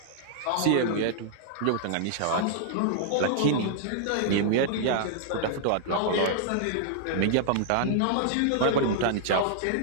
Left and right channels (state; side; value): different; both; correlation -0.01